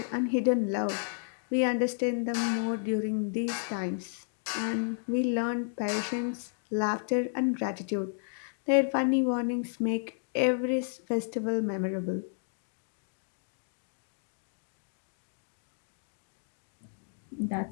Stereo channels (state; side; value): silent; right; digital silence